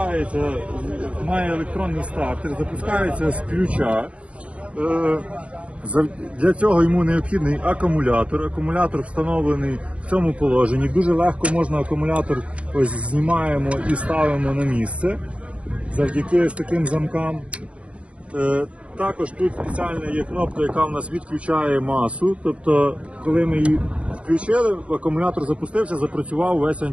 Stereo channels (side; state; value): left; late; 0.062 ms